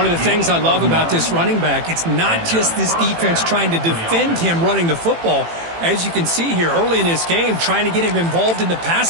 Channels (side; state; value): left; late; 18 ms